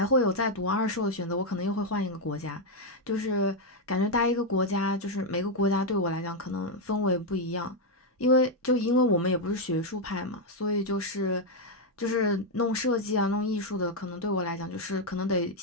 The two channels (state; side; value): normal; both; correlation 0.01